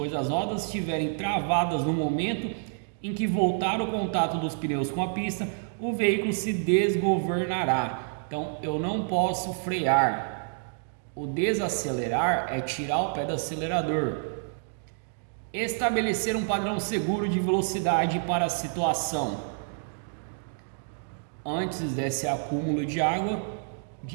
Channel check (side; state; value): left; silent; digital silence